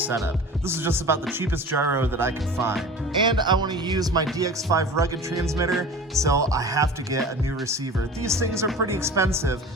This is just about the cheapest gyro that I could find. And I wanna use my DX5 rugged transmitter, so I have to get a new receiver. These things are pretty expensive.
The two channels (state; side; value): normal; both; correlation 0.38